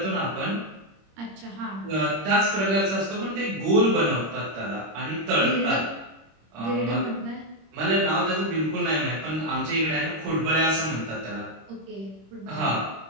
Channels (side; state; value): left; late; 26 ms